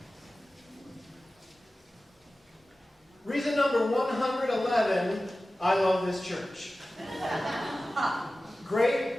Reason number 111, I love this church.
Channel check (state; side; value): normal; both; correlation 0.96